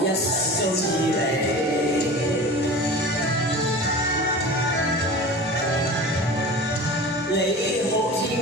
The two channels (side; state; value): both; normal; correlation 0.35